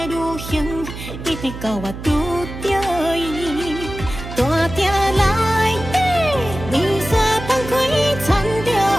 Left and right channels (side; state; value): right; noise; hum, 10 dB below the sound